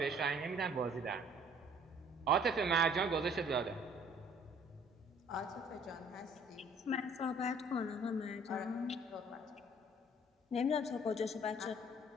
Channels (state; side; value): normal; both; correlation 0.57